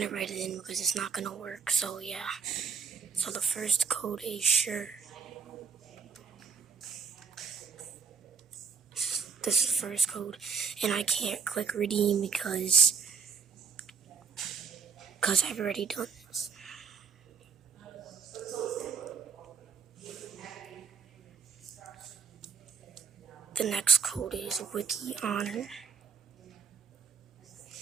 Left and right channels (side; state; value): left; quieter; 5.9 dB